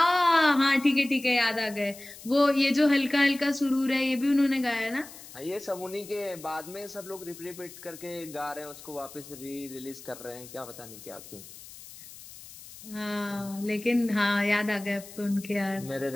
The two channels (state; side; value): noise; left; hiss, 17 dB below the sound